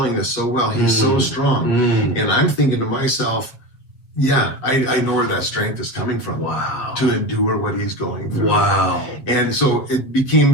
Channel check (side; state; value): right; late; 7.9 ms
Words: this so well. He's so strong. And I'm thinking to myself, yeah, I know where that strength is coming from. Wow. To endure what he's going through. Wow. And so it became